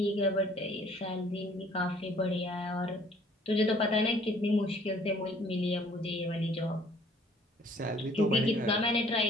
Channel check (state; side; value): normal; both; correlation 0.58